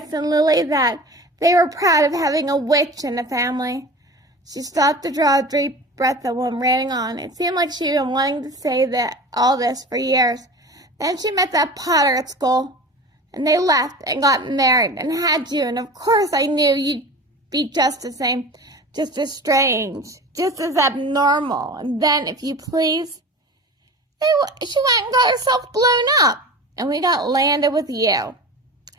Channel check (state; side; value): normal; both; correlation 0.35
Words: and Lily that. They were proud of having a witch in the family." She stopped to draw a deep breath and went ranting on. It seemed like she'd been wanting to say all this for years. Then she met that Potter at school, and they left and got married and had you, and of course I knew you'd be just the same, just as strange, just as abnormal. And then, if you please, she went and got herself blown up, and we got landed with you."